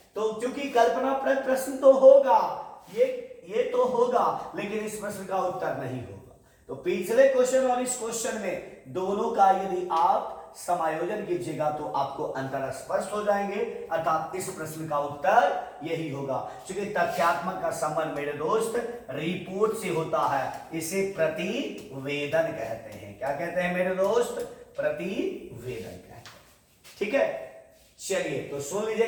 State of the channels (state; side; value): identical; both; correlation 1.00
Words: तो क्योंकि कल्पना प्रश्न तो होगा, ये तो होगा, लेकिन इस प्रश्न का उत्तर नहीं होगा। तो पिछले क्वेश्चन और इस क्वेश्चन में दोनों का यदि आप समायोजन कीजिएगा तो आपको अंतर स्पष्ट हो जाएंगे, अर्थात इस प्रश्न का उत्तर यही होगा। क्योंकि तथ्यात्मक का संबंध मेरे दोस्त रिपोर्ट से होता है, इसे प्रतिवेदन कहते हैं। क्या कहते हैं मेरे दोस्त? प्रतिवेदन कहते हैं। ठीक है, चलिए तो सुन